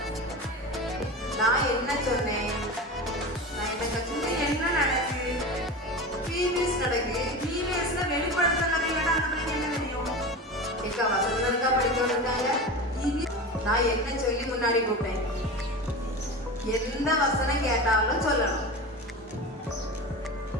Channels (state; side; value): normal; both; correlation 0.28